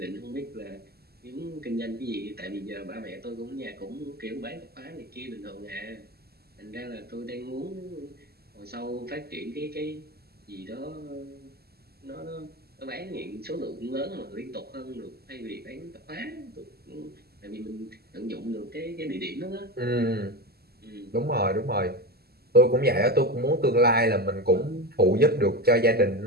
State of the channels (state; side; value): late; left; 0.46 ms